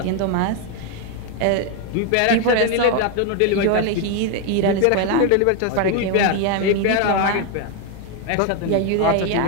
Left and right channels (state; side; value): different; both; correlation 0.01